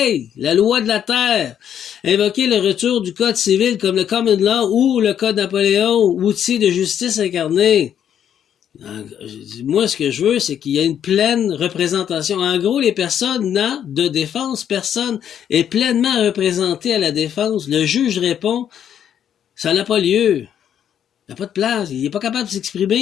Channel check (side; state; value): right; quieter; 9.4 dB